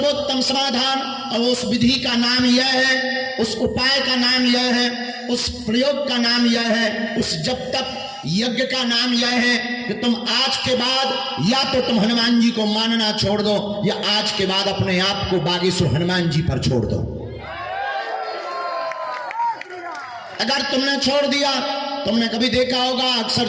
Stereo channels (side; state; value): both; identical; correlation 1.00